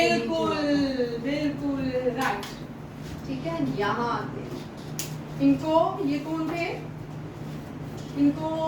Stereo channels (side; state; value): both; identical; correlation 1.00